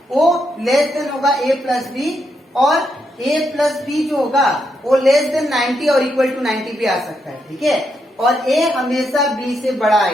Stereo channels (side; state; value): both; normal; correlation 0.80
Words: वो लेस देन होगा a प्लस बी और a प्लस बी जो होगा वो लेस देन 90 और इक्वल टू 90 भी आ सकता है, ठीक है। और a हमेशा b से बड़ा